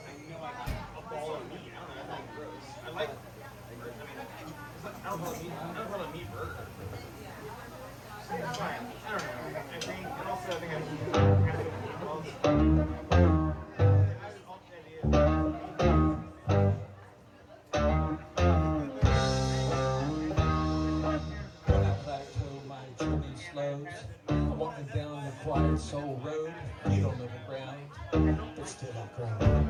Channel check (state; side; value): identical; both; correlation 1.00